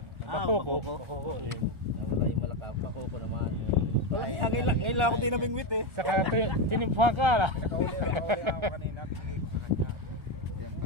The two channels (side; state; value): left; late; 1.4 ms